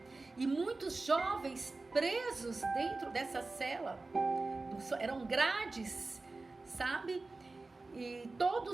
e muitos jovens presos dentro dessa cela. Eram grades, sabe? E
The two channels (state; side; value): quieter; left; 3.5 dB